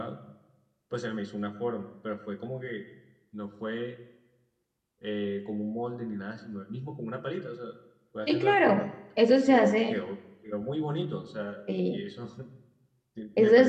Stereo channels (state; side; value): identical; both; correlation 1.00